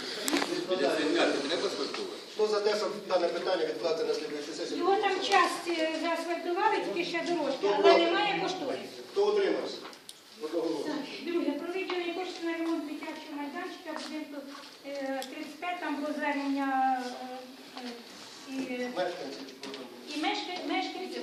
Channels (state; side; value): identical; both; correlation 1.00